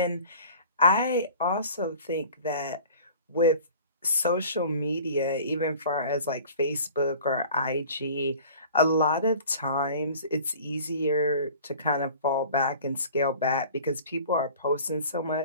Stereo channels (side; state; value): both; inverted; correlation -0.45